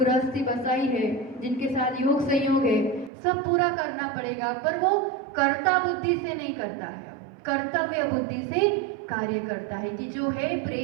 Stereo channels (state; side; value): drops out; left; at 3.1 s